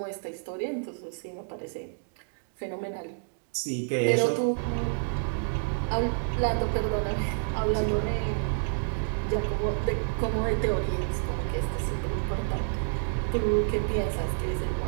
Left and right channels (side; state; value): left; silent; digital silence